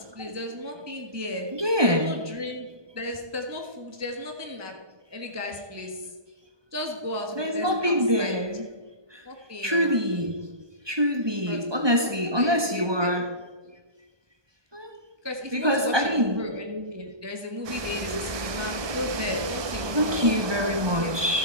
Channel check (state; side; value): late; left; 1.2 ms